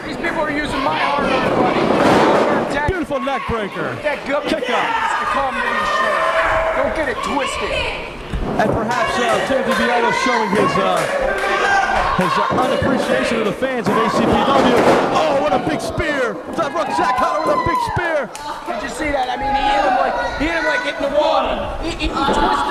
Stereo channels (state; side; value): identical; both; correlation 1.00